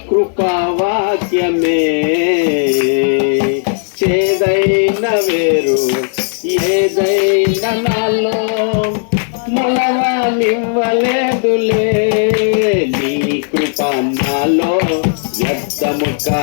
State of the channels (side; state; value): right; silent; 66 dB below the other